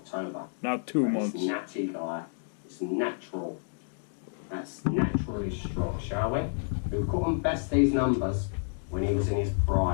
Not 2 months. It's natty, guy. It's natural. That's naturally strong, shall we? We couldn't best these numbers when he was in his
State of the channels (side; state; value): right; silent; digital silence